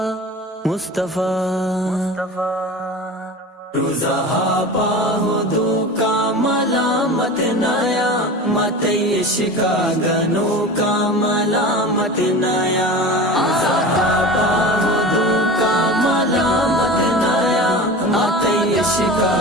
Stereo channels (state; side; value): normal; both; correlation 0.33